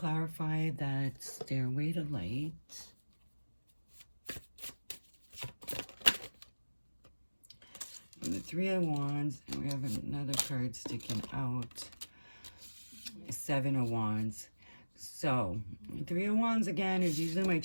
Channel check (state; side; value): inverted; both; correlation -1.00